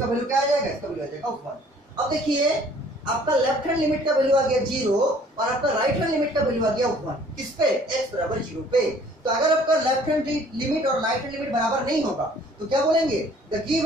वैल्यू क्या आ जाएगा, इसका वैल्यू आ जाएगा 1। अब देखिए आपका लेफ्ट हैंड लिमिट का वैल्यू आ गया 0, और आपका राइट हैंड लिमिट का वैल्यू आ गया 1। किस पे, x बराबर 0 पे। तो अगर आपका लेफ्ट हैंड लिमिट और राइट हैंड लिमिट बराबर नहीं होगा तो क्या बोलेंगे, the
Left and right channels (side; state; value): both; normal; correlation 0.56